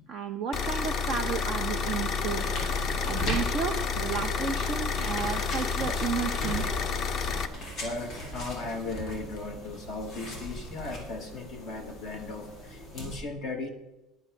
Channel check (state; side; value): normal; both; correlation 0.50